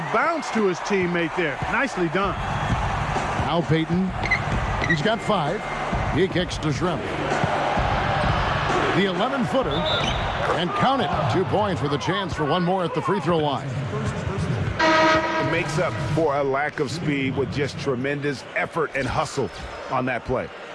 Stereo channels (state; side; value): identical; both; correlation 1.00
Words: bounce to his teammate there. Nicely done. Now Payton. He's got 5. He kicks to Shrimp. The 11-footer. And count it. 2 points with a chance for one more at the free throw line. It makes up for a lack of speed with just tremendous effort and hustle on that play.